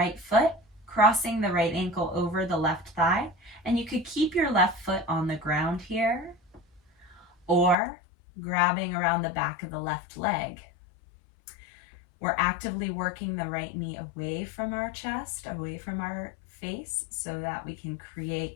foot, crossing the right ankle over the left thigh, and you could keep your left foot on the ground here, or grabbing around the back of the left leg. We're actively working the right knee away from our chest, away from our face, so that we can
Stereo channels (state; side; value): drops out; right; at 7.8 s